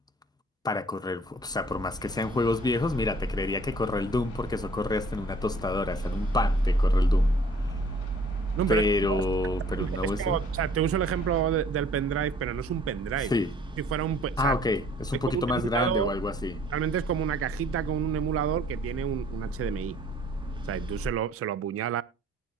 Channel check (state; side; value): normal; both; correlation 0.55